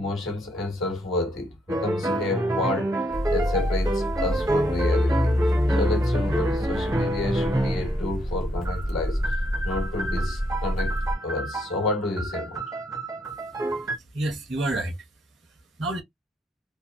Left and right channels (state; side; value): normal; both; correlation 0.75